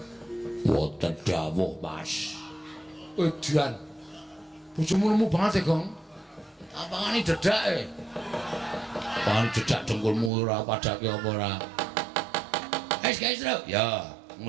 wonten dawuh, Mas. Edian. Bojomu lemu banget ya, Gong. Apangane dedake? Apangane dedak dengkulmu ora padake apa ora? Guys, lho. Ya,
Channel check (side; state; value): left; drops out; at 10.3 s